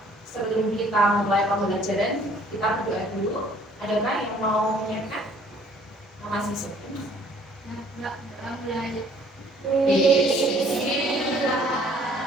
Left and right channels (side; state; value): both; normal; correlation 0.59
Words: sebelum kita mulai pembelajaran, kita berdoa dulu. Adakah yang mau menyiapkan? Masih sepi? Enggak mulai.